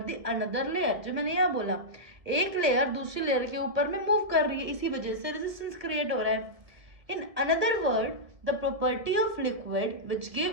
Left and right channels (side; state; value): left; late; 1.7 ms